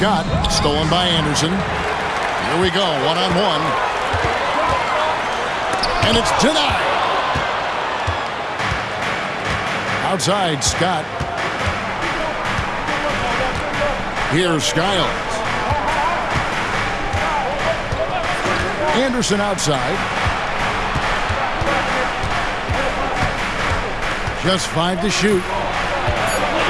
stolen by Anderson. Here we go, one-on-one. And it's denied. Outside, Scott. Here's Skiles. Anderson outside. Just 5 to shoot.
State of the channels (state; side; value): identical; both; correlation 1.00